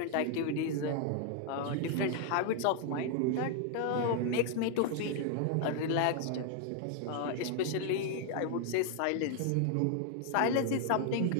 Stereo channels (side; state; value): both; different; correlation 0.00